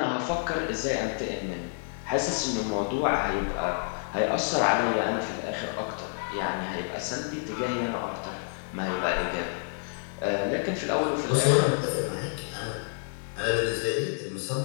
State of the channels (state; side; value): silent; right; 57 dB below the other